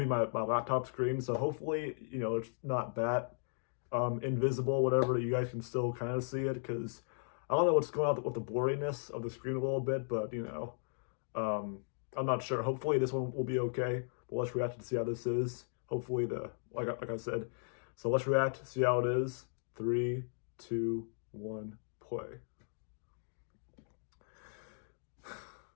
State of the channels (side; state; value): right; silent; digital silence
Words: laptop screen. So hopefully, it's not that invisible, whatever. You guys can still kind of see it because I don't know what's going on with the blurriness of the screen a little bit, but I'm not sure. Hopefully this one will be okay. But let's react to see how this is. Hopefully like I said. So let's react, see how it is. 3, 2, 1, play.